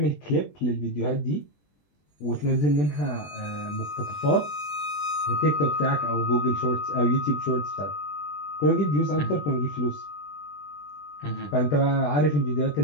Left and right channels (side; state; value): right; late; 20 ms